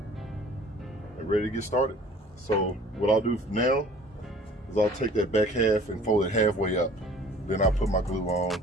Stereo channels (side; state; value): both; normal; correlation 0.50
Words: and ready to get started. So what I'll do now is I'll take that back half and fold it halfway up. Then I'll put my glue on,